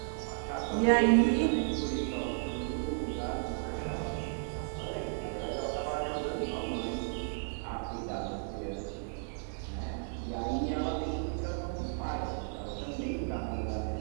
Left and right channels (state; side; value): silent; left; digital silence